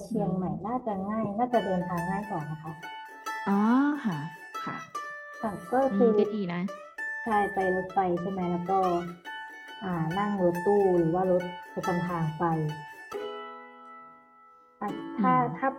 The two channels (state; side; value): identical; both; correlation 1.00